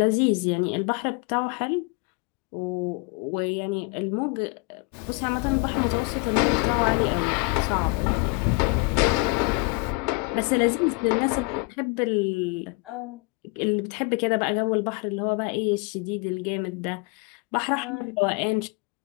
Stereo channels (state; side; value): quieter; right; 27.1 dB